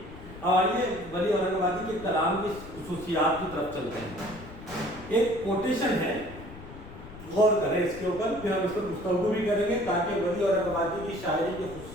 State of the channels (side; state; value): left; noise; rumble, 15 dB below the sound